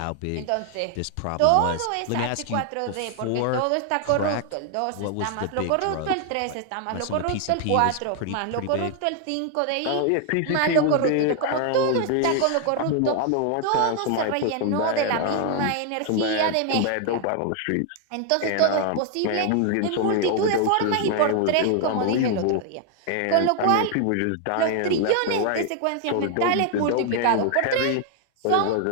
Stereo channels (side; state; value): both; different; correlation 0.00